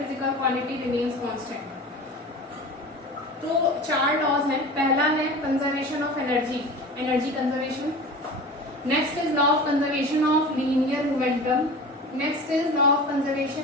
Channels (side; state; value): both; normal; correlation 0.35